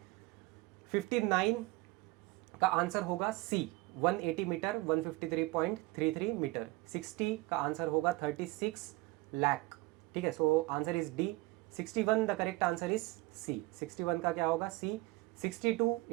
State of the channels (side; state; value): left; quieter; 21.5 dB